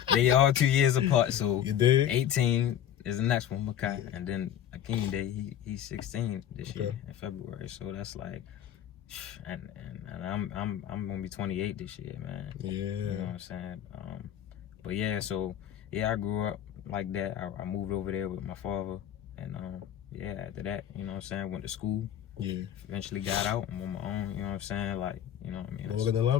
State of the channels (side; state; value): right; quieter; 10.4 dB